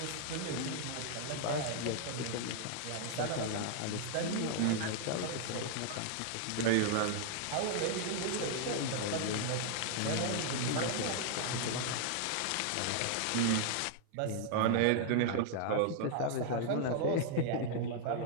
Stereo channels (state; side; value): different; both; correlation 0.00